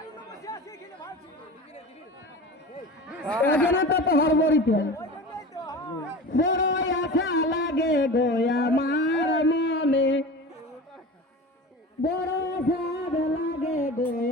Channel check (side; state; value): both; normal; correlation 0.33